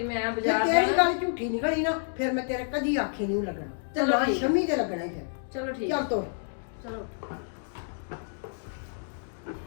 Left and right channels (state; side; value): silent; right; digital silence